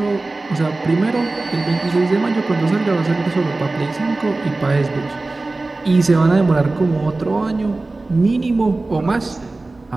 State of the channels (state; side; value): quieter; left; 3.2 dB